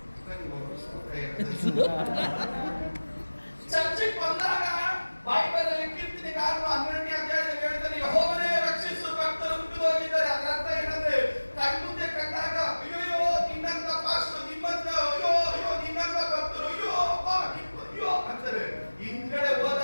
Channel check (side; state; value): both; inverted; correlation -1.00